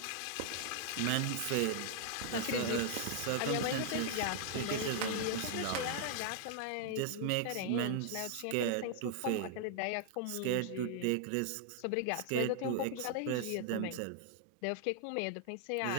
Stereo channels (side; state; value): both; different; correlation -0.01